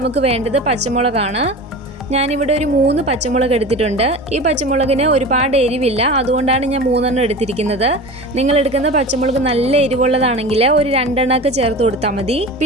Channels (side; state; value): both; normal; correlation 0.33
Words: വേണ്ടത് പച്ചമുളകാണ്. ഞാനിവിടെ ഒരു 3 പച്ചമുളക് എടുത്തിട്ടുണ്ട്. ഈ പച്ചമുളകിന് ഒരുപാട് എരിവില്ല, അതുകൊണ്ടാണ് ഞാൻ 3 എണ്ണം എടുത്തിരിക്കുന്നത്. നിങ്ങൾ എടുക്കുന്ന പച്ചമുളക് നല്ല എരിവുള്ളതാണെങ്കിൽ ഒരു 2 എണ്ണമൊക്കെ ചേർത്ത് കൊടുത്താൽ മതി.